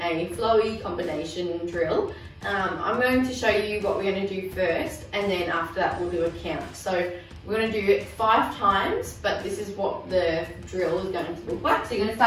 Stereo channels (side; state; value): both; identical; correlation 1.00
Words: a flowy combination drill. I'm going to show you what we're going to do first and then after that we'll do a count. So we're going to do it 5 times, but this is what the drill is going to look like. So you're going to